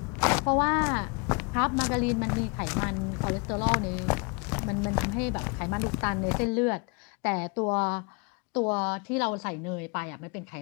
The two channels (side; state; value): right; quieter; 32.3 dB